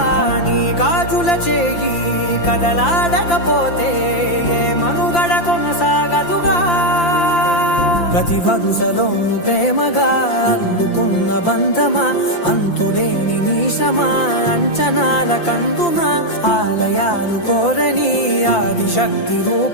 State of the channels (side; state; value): right; late; 5.8 ms